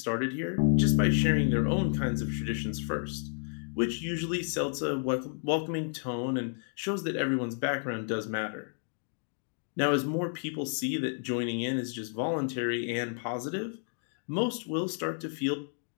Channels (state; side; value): silent; right; 57 dB below the other